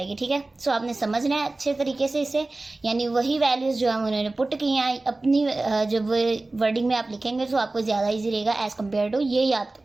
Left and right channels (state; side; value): quieter; left; 3.1 dB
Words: ठीक है। सो आपने समझना है अच्छे तरीके से इसे, यानी वही वैल्यूज़ जो हम उन्होंने पुट की हैं अपनी जब वर्डिंग में आप लिखेंगे तो आपको ज़्यादा ईजी रहेगा एज़ कम्पेयर टू ये याद